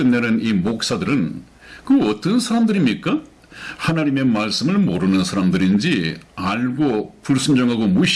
이 목사들은 그 어떤 사람들입니까? 하나님의 말씀을 모르는 사람들인지 알고 불순종하고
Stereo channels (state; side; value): identical; both; correlation 1.00